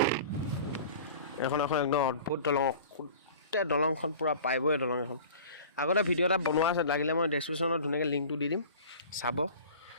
এখন একদম অদ্ভুত দলং, গোটেই দলংখন পূৰা পাইপৰে দলং এখন। আগতে ভিডিঅ' এটা বনোৱা আছে, লাগিলে মই ডেছক্ৰিপশ্যনত ধুনীয়াকৈ লিংকটো দি দিম, চাব।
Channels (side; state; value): both; inverted; correlation -0.41